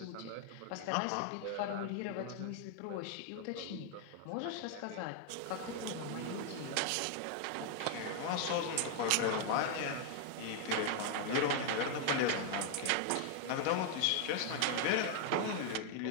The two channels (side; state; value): both; different; correlation 0.00